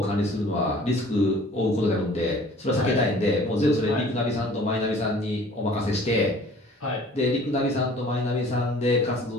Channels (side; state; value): both; normal; correlation 0.50